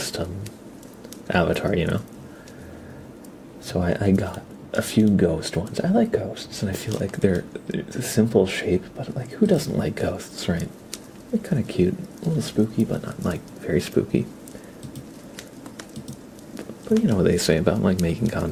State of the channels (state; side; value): identical; both; correlation 1.00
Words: avatar, you know? So I got a few ghost ones. I like ghosts, and I feel like they're a simple shape, but, like, who doesn't like ghosts, right? They're kind of cute, a little spooky, but not, like, very spooky. But you know what they say about like making